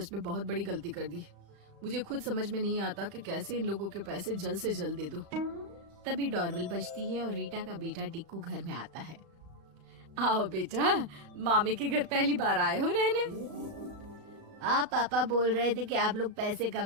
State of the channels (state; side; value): late; left; 35 ms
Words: में बहुत बड़ी गलती कर दी। मुझे खुद समझ में नहीं आता कि कैसे इन लोगों के पैसे जल्द से जल्द दे दूं। तभी डोरबेल बजती है और रीटा का बेटा टिक्कू घर में आता है। आओ बेटा, मामी के घर पहली बार आए हो रहने? आप पापा बोल रहे थे कि आप लोग पैसे का